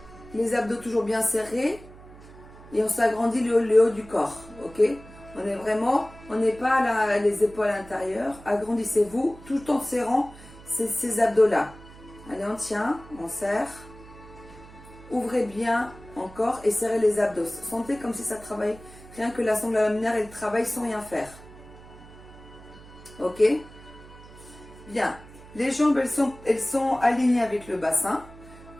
Les abdos toujours bien serrés. Et on s'agrandit le haut du corps, ok? On est vraiment, on n'est pas là, les épaules à l'intérieur. Agrandissez-vous tout en serrant ces abdos-là. Allez, on tient, on serre. Ouvrez bien encore et serrez les abdos. Sentez comme si ça travaille. Rien que la sangle laminaire, elle travaille sans rien faire. Ok? Bien. Les jambes, elles sont alignées avec le bassin.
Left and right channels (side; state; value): right; noise; hum, 19 dB below the sound